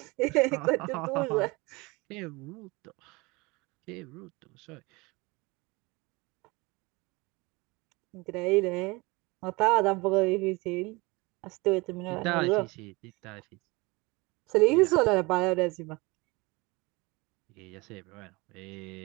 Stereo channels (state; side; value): quieter; left; 24.7 dB